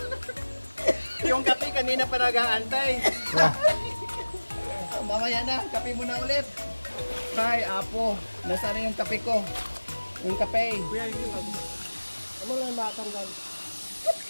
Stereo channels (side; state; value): both; inverted; correlation -1.00